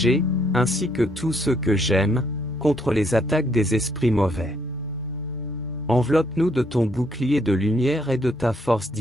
ainsi que tous ceux que j'aime, contre les attaques des esprits mauvais. Enveloppe-nous de ton bouclier de lumière et de ta force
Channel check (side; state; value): both; normal; correlation 0.70